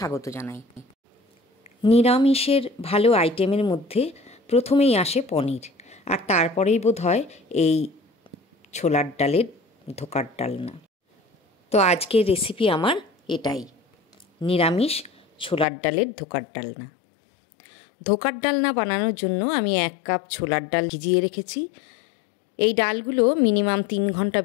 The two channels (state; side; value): drops out; right; at 15.7 s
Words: জানাই। নিরামিষের ভালো আইটেমের মধ্যে প্রথমেই আসে পনির, আর তারপরেই বোধহয় এই ছোলার ডালের ধোকার ডালনা। তো আজকের রেসিপি আমার এটাই, নিরামিষ ছোলার ডালের ধোকার ডালনা। ধোকার ডালনা বানানোর জন্য আমি 1 কাপ ছোলার ডাল ভিজিয়ে রেখেছি। এই ডালগুলো মিনিমাম 3 ঘন্টা